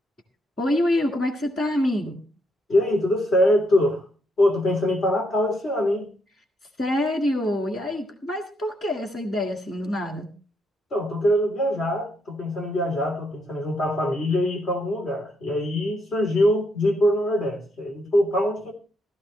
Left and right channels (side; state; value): both; normal; correlation 0.77